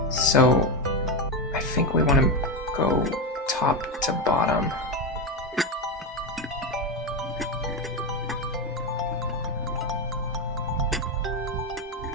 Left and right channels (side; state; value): both; normal; correlation 0.12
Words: So, I think we want to go top to bottom.